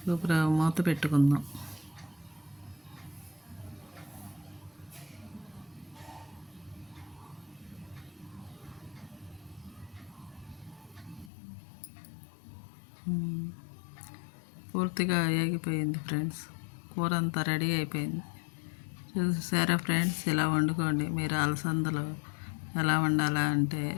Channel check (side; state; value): right; drops out; at 11.3 s